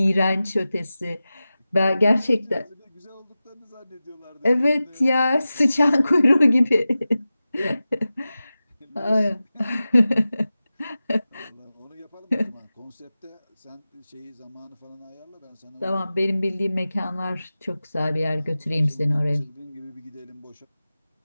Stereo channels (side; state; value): both; inverted; correlation -0.95